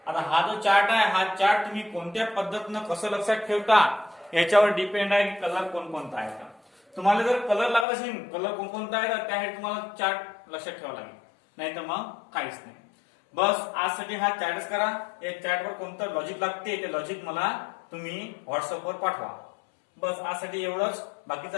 आता हा जो चार्ट आहे हा चार्ट तुम्ही कोणत्या पद्धतीनं कसं लक्षात ठेवता याच्यावर डिपेंड आहे की कलर कोणकोणता आहे का. तुम्हाला जर कलर लागत असेल कलर कोणकोणता आहे तर त्यासाठी तुम्हाला चार्ट लक्षात ठेवावा लागेल नाही तर मग काहीच नाही. बस आजसाठी हा चार्टच करा. या चार्टवर कोणतं लॉजिक लागते ते लॉजिक मला तुम्ही व्हॉट्सअपवर पाठवा. बस आजसाठी एवढंच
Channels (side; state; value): right; drops out; at 7.9 s